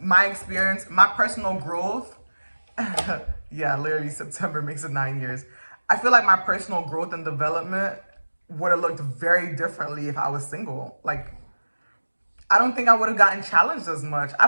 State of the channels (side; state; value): both; inverted; correlation -1.00